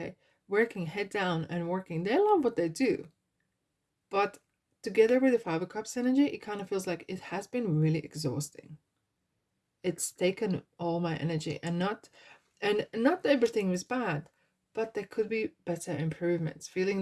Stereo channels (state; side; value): identical; both; correlation 1.00